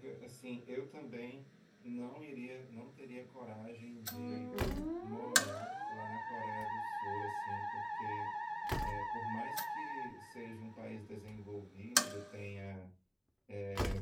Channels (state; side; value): identical; both; correlation 1.00